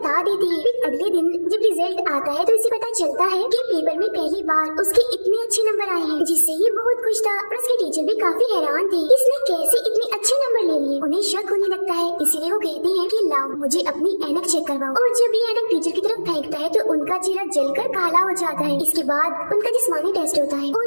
देते हैं। फिर अगले दिन जब रिजल्ट आता है तो इसे पता चलता है कि पेपर में पहली बार उसके इतने अच्छे नंबर आए हैं, जिससे ये बहुत खुश था और उसके टीचर भी काफी हैरान थे, इसने कैसे इतने अच्छे नंबर ले लिए। उन्हें शक होने लगता है, इसीलिए वो कहते हैं कि लाओ मुझे अपनी ऐनक चेक करवाओ। और जब ये ऐनक टीचर की तरफ फेंकता है तो उनका चेहरा जलकर काला हो जाता है। इसके बाद उनका जिस्मानी टेस्ट होता है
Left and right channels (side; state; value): both; inverted; correlation -1.00